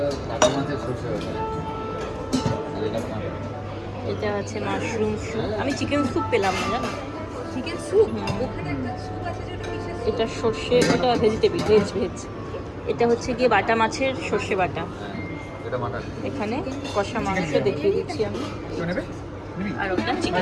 কাটা মাছের সর্ষে বাটা। আর এটা ভাত। এটা আছে মাশরুম স্যুপ, আমি চিকেন স্যুপ পেলাম না জানো। চিকেন স্যুপ ওখানে একটা স্যুপ আছে যেটা কিসের এটা সর্ষে, এটা ভেজিটেবিল, ভেজ। এটা হচ্ছে গিয়ে বাটা মাছের সর্ষে বাটা। হ্যাঁ, এটা মাটন। এখানে কষা মাংস দেখিয়ে দিচ্ছি আমি, কেউ নেবে? নিবি? আর ওটা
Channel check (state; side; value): identical; both; correlation 1.00